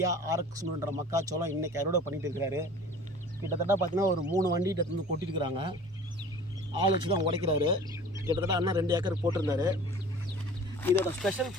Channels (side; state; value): both; normal; correlation 0.44